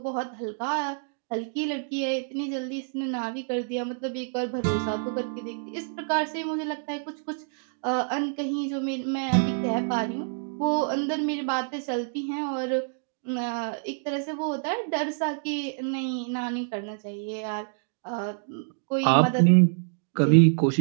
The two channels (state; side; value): silent; left; digital silence